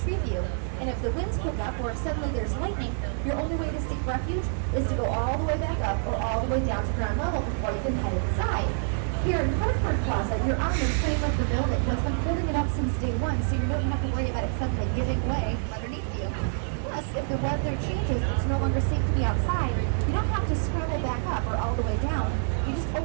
you. And if the winds pick up or if suddenly there's lightning, your only way to seek refuge is to go all the way back up or all the way down to ground level before you can head inside. Here in Hartford Plaza, you're on the frame of the building. What's been holding it up since day one, so you don't have to worry about it suddenly giving way from underneath you. Plus, if the weather changes, it's no longer safe to be outside, you don't have to scramble back up or all the way down. You just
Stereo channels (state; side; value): silent; left; 60 dB below the other